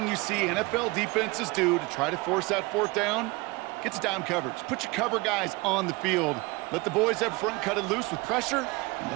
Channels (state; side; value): quieter; left; 24.2 dB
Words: you see NFL defenses do to try to force that 4th down, gets down coverage. Put your cover guys on the field. Let the boys up front cut it loose with pressure, and